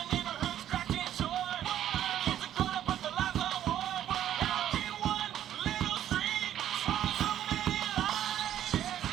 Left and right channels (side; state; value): left; quieter; 11.2 dB